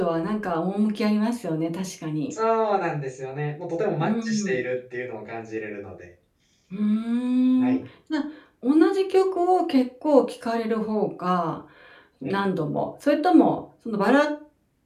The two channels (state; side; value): identical; both; correlation 1.00